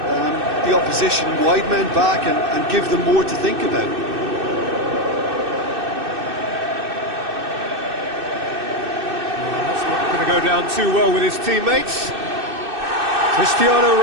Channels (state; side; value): late; left; 2.6 ms